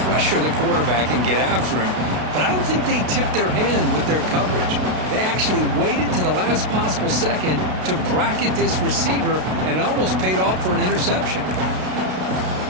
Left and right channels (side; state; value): left; late; 32 ms